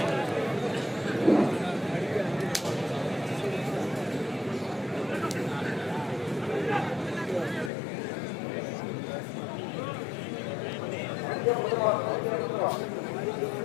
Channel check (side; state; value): right; drops out; at 7.7 s